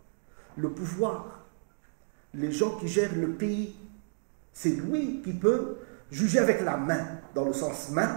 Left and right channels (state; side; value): silent; left; digital silence